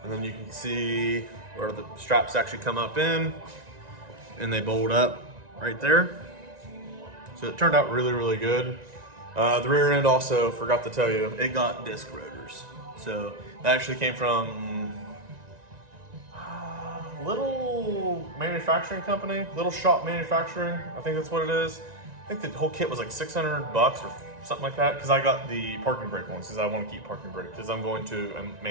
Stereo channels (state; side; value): late; left; 1.9 ms